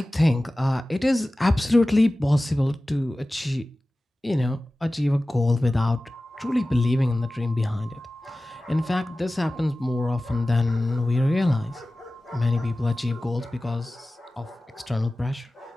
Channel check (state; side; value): normal; both; correlation 0.96